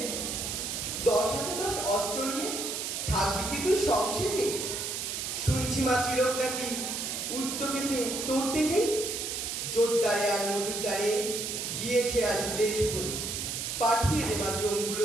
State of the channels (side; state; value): right; noise; hiss, 3 dB below the sound